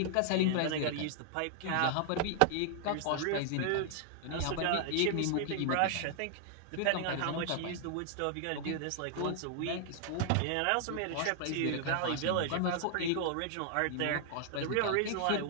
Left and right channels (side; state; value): both; different; correlation 0.00